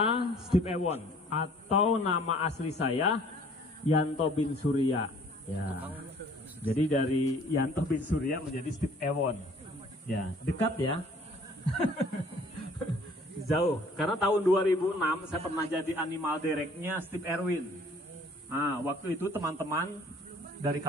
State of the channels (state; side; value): normal; both; correlation 0.54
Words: Steve Ewon atau nama asli saya Yanto bin Surya. Ya. Jadi dari Yanto bin Surya menjadi Steve Ewon. Ya, dekat ya. Jauh. Karena tahun 2006 saya pernah jadi animal directnya Steve Erwin. Nah, waktu itu teman-teman dari